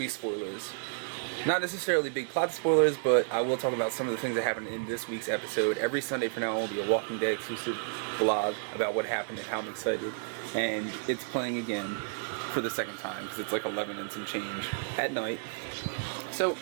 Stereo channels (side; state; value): left; silent; digital silence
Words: spoilers. Not necessarily big plot spoilers, but I will talk about some of the things that happened in this week's episode. Every Sunday from now on will be a Walking Dead exclusive vlog about what happened and how I'm excited. And it's playing again for the second time because it's like 11 and some change at night. So